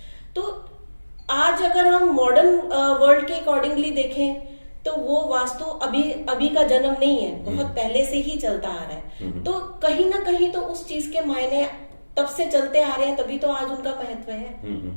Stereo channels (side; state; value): both; inverted; correlation -1.00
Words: तो आज अगर हम मॉडर्न वर्ल्ड के अकॉर्डिंगली देखें तो वो वास्तु अभी का जन्म नहीं है, बहुत पहले से ही चलता आ रहा है। तो कहीं ना कहीं तो उस चीज के मायने तब से चलते आ रहे हैं, तभी तो आज उनका महत्व है।